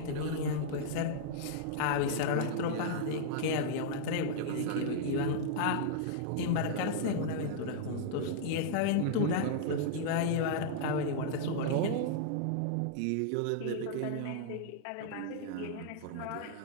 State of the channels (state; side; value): different; both; correlation -0.01